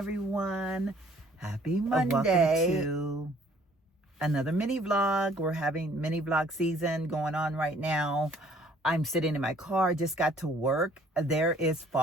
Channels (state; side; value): normal; both; correlation 0.59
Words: Happy Monday. Welcome to another mini vlog. We're having mini vlog season going on right now. I'm sitting in my car, just got to work. There is